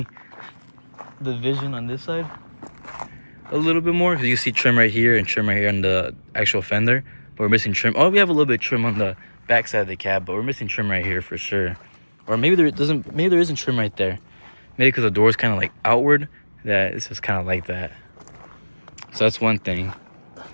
the vision on this side a little bit more, because you see trim right here and trim right here on the actual fender. But we're missing trim. Oh, we have a little bit of trim on the back side of the cab, but we're missing trim right here for sure. Or maybe there isn't trim right there. Maybe because the door is kind of like outward, that it's just kind of like that. So that's one thing.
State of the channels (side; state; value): both; inverted; correlation -1.00